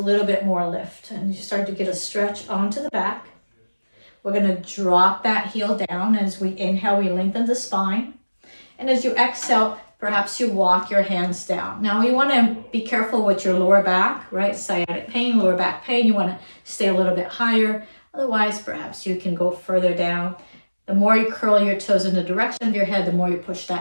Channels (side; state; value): both; inverted; correlation -1.00